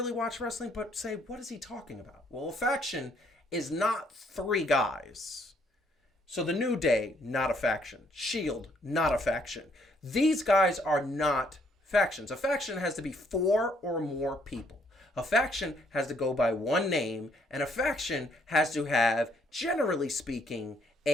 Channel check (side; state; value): both; normal; correlation 0.68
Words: watch wrestling but say, what is he talking about? Well, a faction is not 3 guys. So the New Day, not a faction. Shield, not a faction. These guys are not factions. A faction has to be 4 or more people. A faction has to go by one name, and a faction has to have, generally speaking,